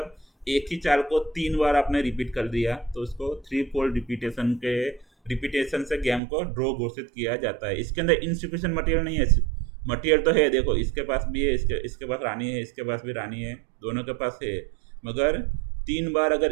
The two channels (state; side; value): drops out; left; at 6.2 s